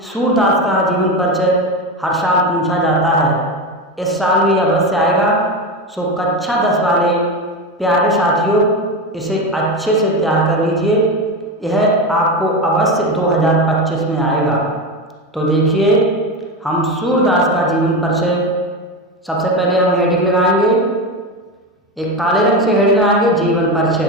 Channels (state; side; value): normal; both; correlation 0.19